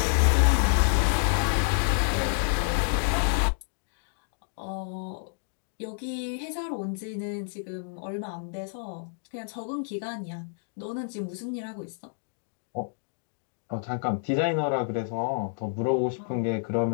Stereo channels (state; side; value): silent; right; digital silence